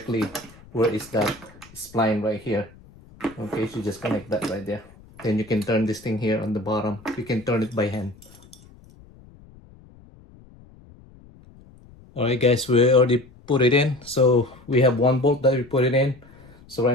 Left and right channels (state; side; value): noise; left; rumble, 24 dB below the sound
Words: where is that spline right here. Okay, so just connect that right there. Then you can turn this thing here on the bottom. You can turn it by hand. All right guys, we already put it in. So we have one bolt that we put it in. So